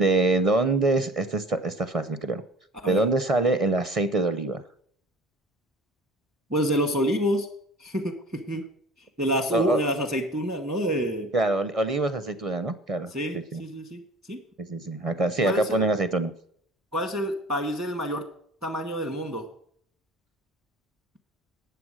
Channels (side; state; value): both; normal; correlation 0.44